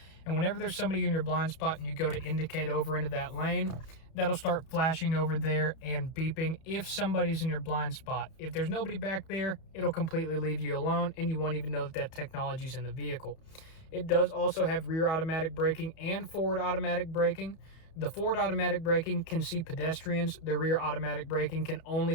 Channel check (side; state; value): right; late; 31 ms